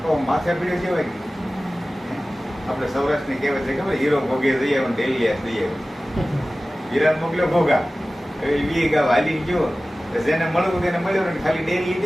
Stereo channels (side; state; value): both; normal; correlation 0.97